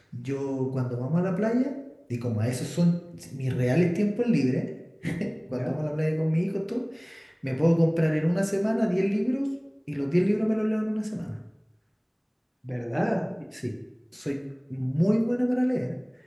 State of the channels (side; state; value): both; identical; correlation 1.00